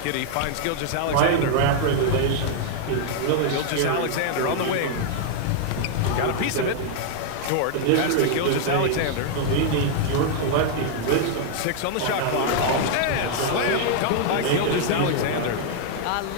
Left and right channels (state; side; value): different; both; correlation 0.00